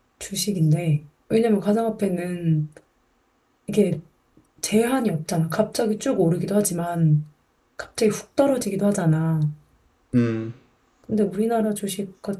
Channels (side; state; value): both; identical; correlation 1.00